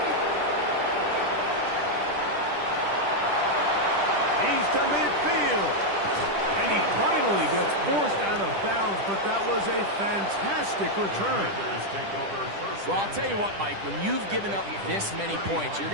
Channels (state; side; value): late; left; 10 ms